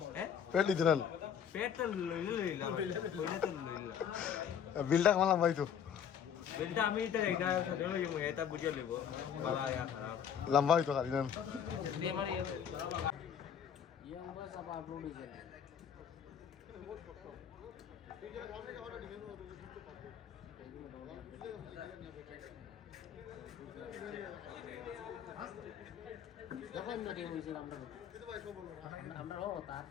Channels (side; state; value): right; quieter; 8.3 dB